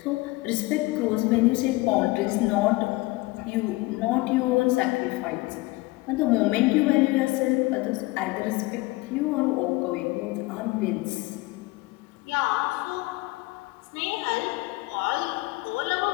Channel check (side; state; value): right; quieter; 21.6 dB